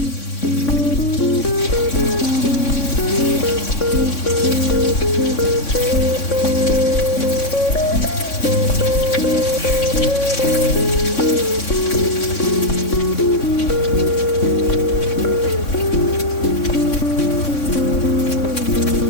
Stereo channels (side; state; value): right; late; 3.6 ms